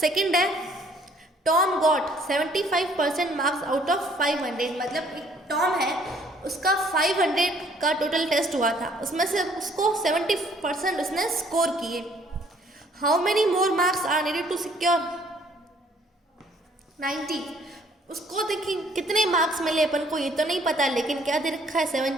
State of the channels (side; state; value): both; normal; correlation 0.61